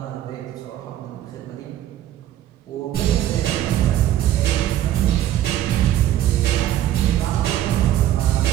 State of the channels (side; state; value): left; quieter; 12.4 dB